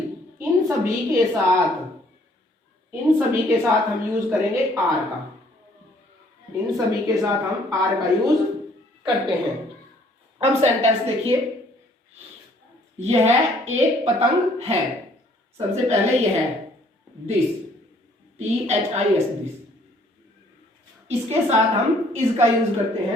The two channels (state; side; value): normal; both; correlation 0.62